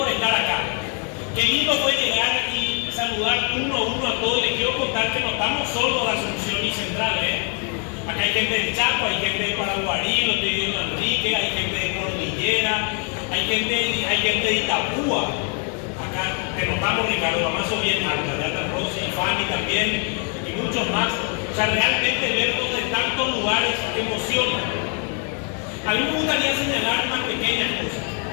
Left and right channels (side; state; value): right; quieter; 39.6 dB